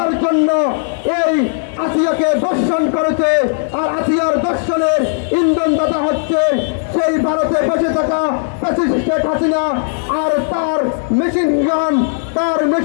জন্য এই আসিয়াকে দর্শন করেছে। আর আসিয়ার দর্শনের ইন্ধনদাতা হচ্ছে সেই ভারতে বসে থাকা ফ্যাসিস্ট শেখ হাসিনা আর তার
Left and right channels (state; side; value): silent; right; 69 dB below the other